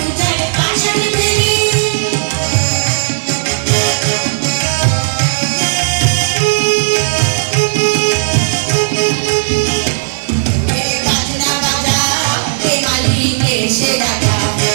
পাষাণ বেরি বাজনা বাজা কে মালিক এসে রাজা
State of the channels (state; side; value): silent; left; digital silence